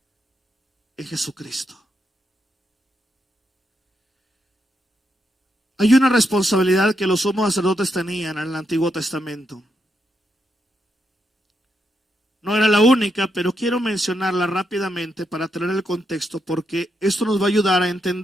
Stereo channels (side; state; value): both; normal; correlation 0.81